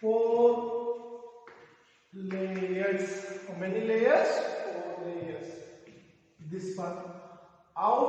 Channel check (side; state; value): both; identical; correlation 1.00